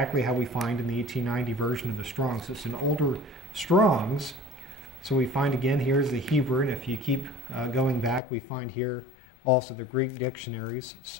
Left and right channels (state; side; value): drops out; right; at 8.2 s